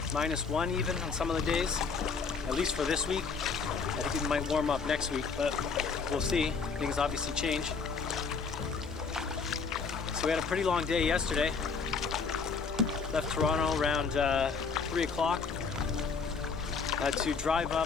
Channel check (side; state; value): right; quieter; 5.2 dB